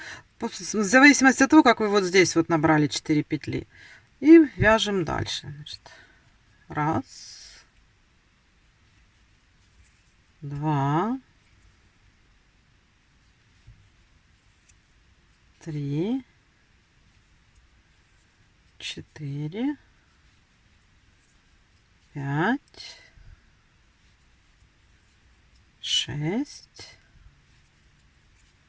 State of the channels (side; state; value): both; identical; correlation 1.00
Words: в зависимости от того, как вы вот здесь вот набрали 4 петли. И вяжем дальше. Значит, раз, два, три, четыре, пять, шесть,